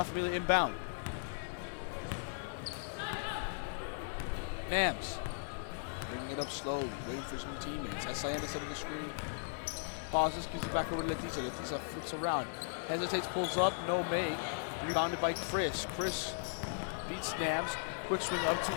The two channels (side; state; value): right; silent; 53 dB below the other